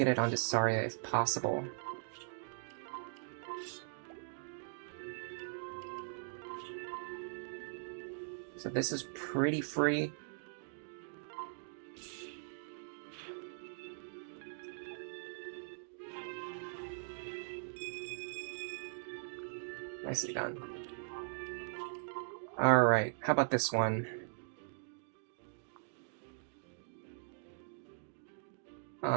it onto Saria if possible. So this is pretty free. Nicely done. Alright, how about this one?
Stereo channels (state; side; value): silent; left; digital silence